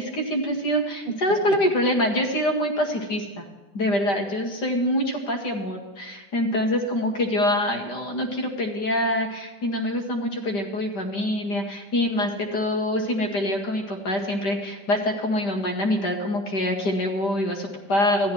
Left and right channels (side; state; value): right; late; 5.1 ms